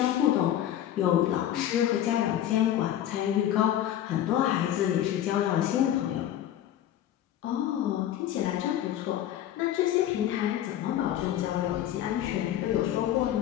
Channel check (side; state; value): right; quieter; 11.7 dB